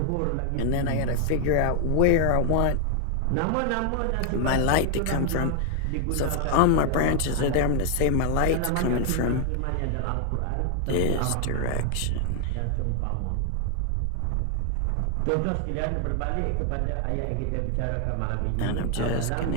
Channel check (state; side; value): different; both; correlation 0.00